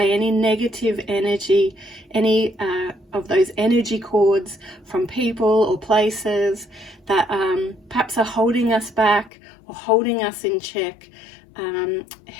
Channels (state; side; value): drops out; right; at 9.3 s